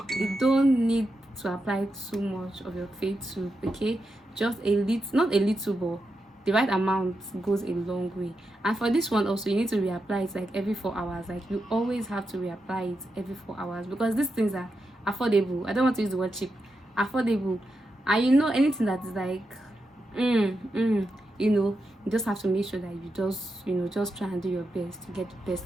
You don't need to apply too much of your face tube, okay? Just a little, not a little, but the right amount goes a long way. And for this one also, you need to reapply it like every 4 hours. Like you always have to reapply it every 4 hours, because these things are affordable. I don't want to use the word cheap. Affordable. And you know, anything that is like you know, you just have to make sure that you just, you know, just try and do your best to get the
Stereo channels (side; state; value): both; normal; correlation 0.87